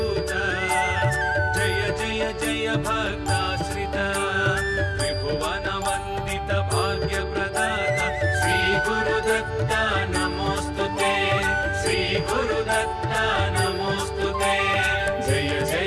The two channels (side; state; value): both; identical; correlation 1.00